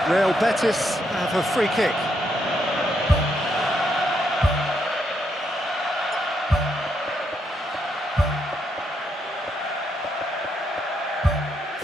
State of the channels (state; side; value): normal; both; correlation 0.78